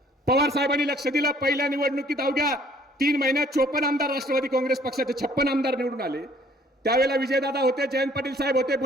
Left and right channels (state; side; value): normal; both; correlation 0.59